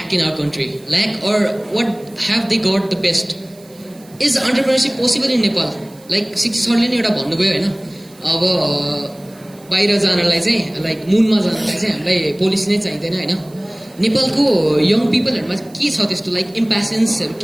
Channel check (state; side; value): noise; right; hiss, 26 dB below the sound